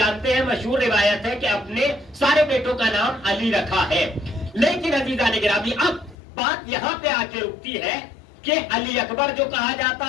ہیں مشہور روایت ہے کہ اپنے سارے بیٹوں کا نام علی رکھا ہے. لیکن عزیزان گرامی اب بات یہاں پہ آ کے رکتی ہے کہ علی اکبر جو کہا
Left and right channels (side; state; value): right; drops out; at 6.2 s